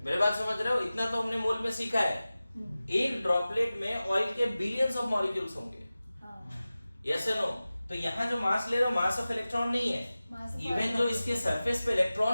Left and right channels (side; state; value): both; inverted; correlation -0.96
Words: मेरे बात समझ रहे हो? इतना तो हमने मोल में सीखा है। एक ड्रॉपलेट में ऑयल के बिलियंस ऑफ मॉलिक्यूल्स होंगे। Yes no? तो यहाँ जो मास ले रहे हो, मास ऑफ इलेक्ट्रॉन नहीं है, इवन जो इसके सरफेस पे